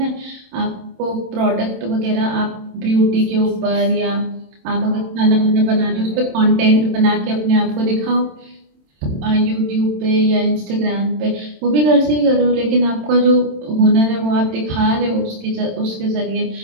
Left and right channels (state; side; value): late; left; 27 ms